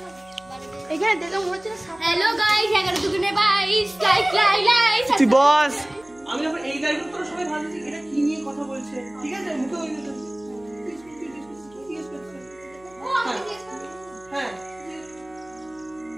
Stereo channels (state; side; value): noise; right; hum, 28 dB below the sound